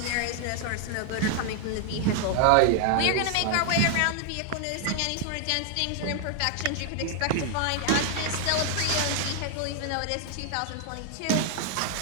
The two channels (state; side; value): different; both; correlation 0.00